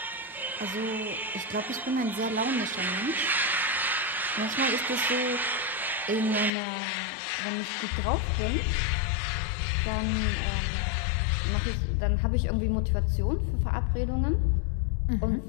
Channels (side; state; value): right; drops out; at 6.5 s